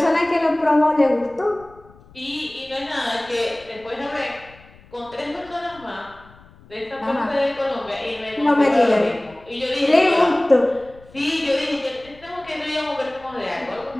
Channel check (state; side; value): noise; left; rumble, 25 dB below the sound